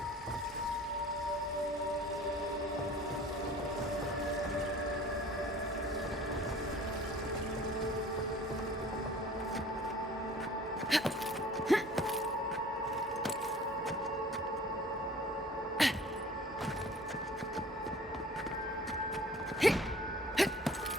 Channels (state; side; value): normal; both; correlation 0.47